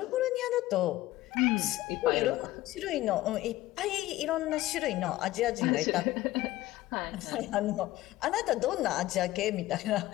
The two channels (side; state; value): right; quieter; 16.5 dB